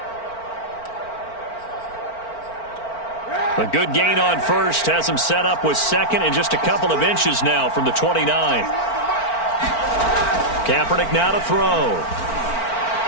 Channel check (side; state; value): right; late; 4.4 ms